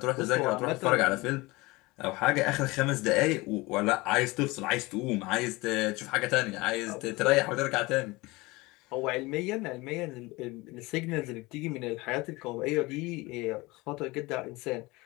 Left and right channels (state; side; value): quieter; right; 22.5 dB